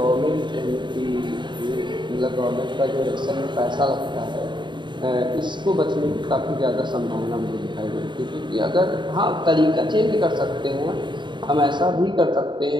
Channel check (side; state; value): left; late; 0.22 ms